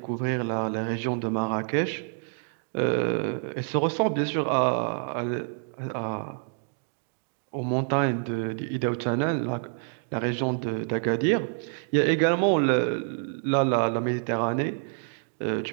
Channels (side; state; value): left; silent; 60 dB below the other